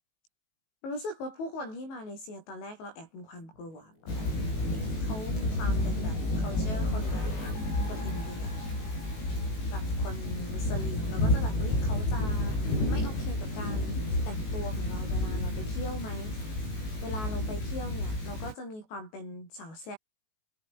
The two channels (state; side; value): late; right; 19 ms